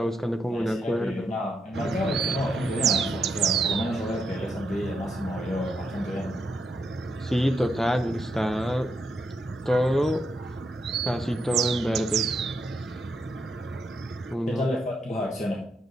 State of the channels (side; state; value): both; normal; correlation 0.81